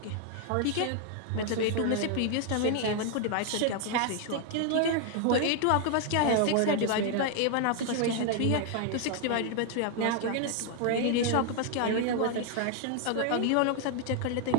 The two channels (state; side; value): different; both; correlation 0.00